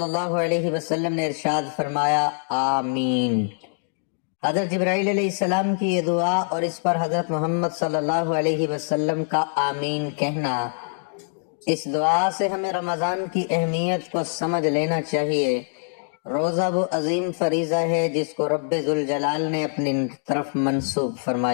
اللہ علیہ وسلم نے ارشاد فرمایا آمین۔ حضرت جبرائیل علیہ السلام کی یہ دعا اور اس پر حضرت محمد صلی اللہ علیہ وسلم کا آمین کہنا، اس دعا سے ہمیں رمضان کی اہمیت کو سمجھ لینا چاہیے۔ روزہ وہ عظیم فریضہ ہے جس کو رب ذوالجلال نے اپنی طرف منسوب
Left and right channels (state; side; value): silent; right; digital silence